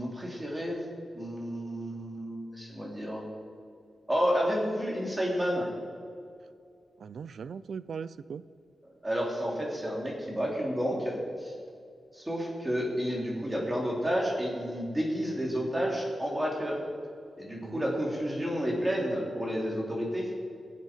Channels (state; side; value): normal; both; correlation 0.92